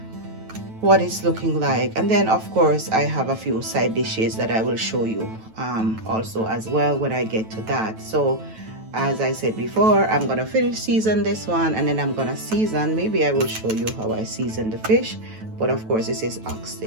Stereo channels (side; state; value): left; late; 9.2 ms